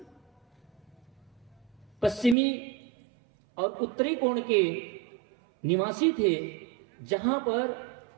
पश्चिमी और उत्तरी कोण के निवासी थे, जहां पर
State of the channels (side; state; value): left; drops out; at 2.4 s